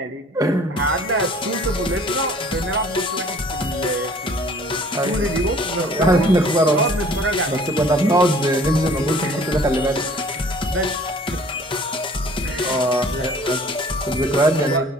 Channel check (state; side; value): normal; both; correlation 0.52